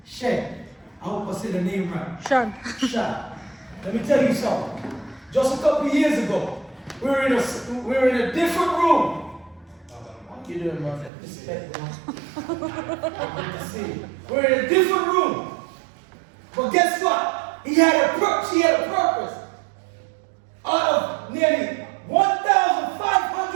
Shen, I hope I said the name right. Sean. Shen. Let me tell you something. Just a couple of years ago, we were in a different room. How you doing, man? Respect, man. Good to see you. We're in a different room. But guess what? She had a purpose. Out of nearly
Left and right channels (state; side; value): drops out; left; at 11.1 s